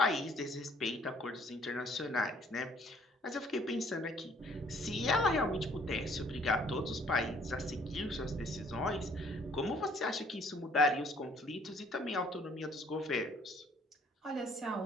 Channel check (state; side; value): normal; both; correlation 0.61